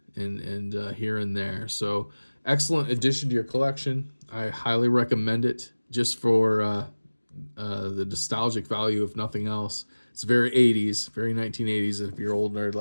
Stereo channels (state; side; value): inverted; both; correlation -1.00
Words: and here and there. So excellent addition to your collection. I highly recommend it just for the nostalgic value, if nothing else. It's very 80s, very 1980s. And if you're old nerd